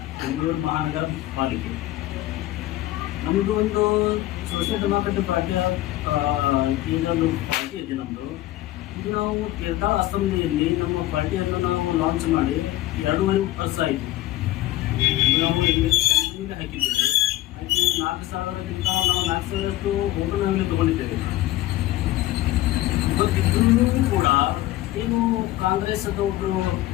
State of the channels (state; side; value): quieter; right; 15.8 dB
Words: ಬೆಂಗಳೂರು ಮಹಾನಗರ ಪಾಲಿಕೆ. ನಮ್ಮದು ಒಂದು ಸೋಷಿಯಲ್ ಡೆಮೋಕ್ರೆಟಿಕ್ ಪಾರ್ಟಿಯ ಇದೊಂದು ಪಾರ್ಟಿ ಇದೆ ನಮ್ಮದು. ಇದು ನಾವು ತೀರ್ಥಾಳ ಅಸೆಂಬ್ಲಿಯಲ್ಲಿ ನಮ್ಮ ಪಾರ್ಟಿಯನ್ನು ನಾವು ಲಾಂಚ್ ಮಾಡಿ 2.5 ವರ್ಷ ಆಯಿತು. ನಾವು ಇಲ್ಲಿ ಹಾಕಿದ್ದೇವೆ. ಹಾಕಿ 4,000ಕ್ಕಿಂತ ನಾವು 4,000ರಷ್ಟು ಓಟು ನಾವಿಲ್ಲಿ ತೊಗೊಂಡಿದ್ದೇವೆ. ಇವತ್ತಿಗೂ ಕೂಡ ಏನು ಕಾಂಗ್ರೆಸ್ ಒಬ್ಬರು